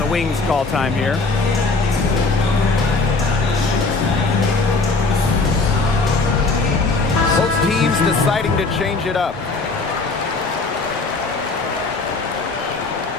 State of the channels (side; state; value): right; quieter; 3.7 dB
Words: the Wings call time here. Both teams deciding to change it up.